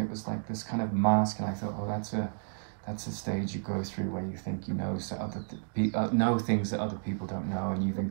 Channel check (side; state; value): left; silent; digital silence